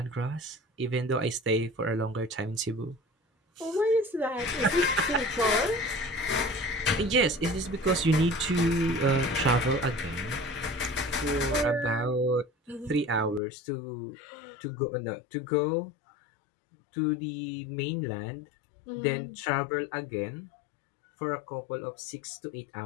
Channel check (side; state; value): right; drops out; at 13.4 s